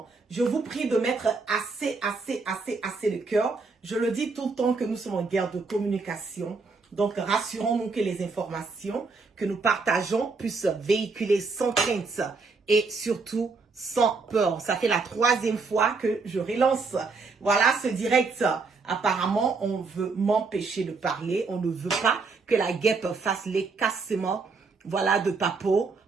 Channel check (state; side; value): quieter; left; 4.3 dB